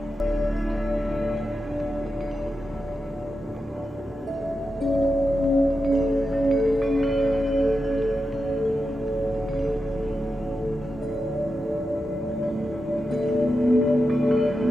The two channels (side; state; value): both; normal; correlation 0.89